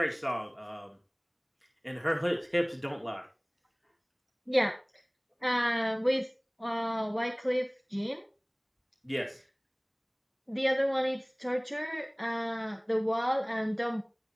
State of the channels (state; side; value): identical; both; correlation 1.00